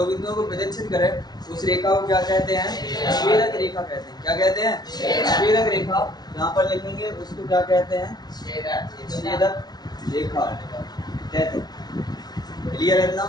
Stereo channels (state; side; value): late; right; 0.19 ms